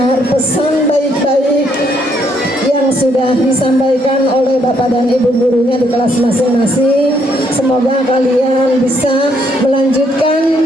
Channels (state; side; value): normal; both; correlation 0.71